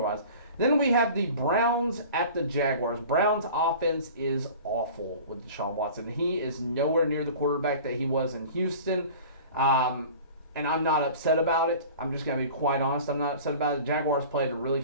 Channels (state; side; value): inverted; both; correlation -0.41